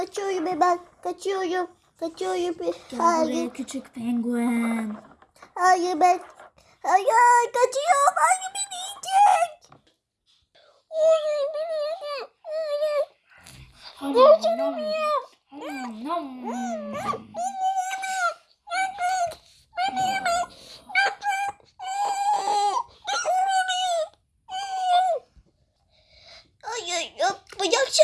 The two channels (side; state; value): both; identical; correlation 1.00